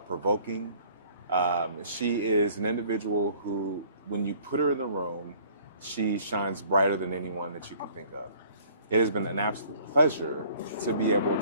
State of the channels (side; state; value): both; inverted; correlation -0.55